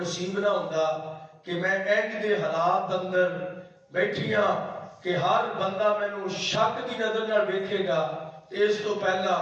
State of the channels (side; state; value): both; identical; correlation 1.00